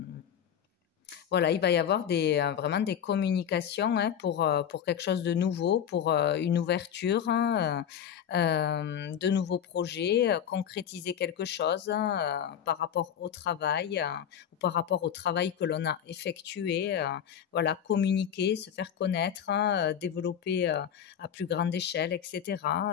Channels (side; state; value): right; quieter; 8.9 dB